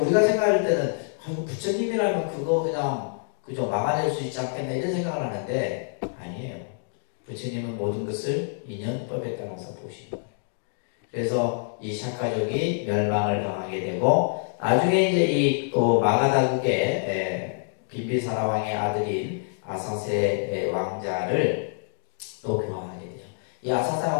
우리가 생각할 때는 부처님이라면 그거 그냥 그저 막아낼 수 있지 않겠나 이런 생각을 하는데 아니에요. 부처님은 모든 것을 인연법에 따라서 보시는 거예요. 그래서 이 샤카족이 멸망을 당하게 되고 나중에 이제 이 또 마가다국의 빈비사라 왕의 아들인 아사세 왕자를 또 교화하게 돼요. 이 아사세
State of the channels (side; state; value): right; silent; digital silence